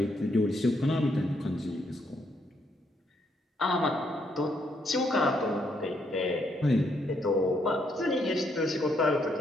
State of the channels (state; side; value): normal; both; correlation 0.74